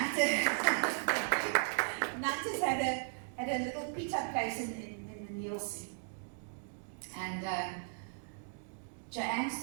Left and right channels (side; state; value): left; silent; digital silence